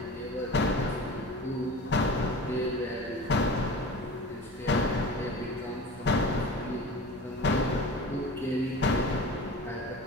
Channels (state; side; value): normal; both; correlation 0.36